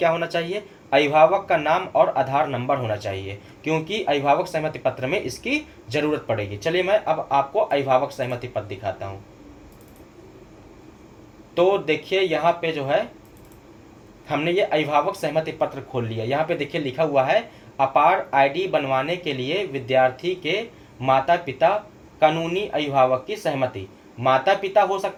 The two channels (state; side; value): identical; both; correlation 1.00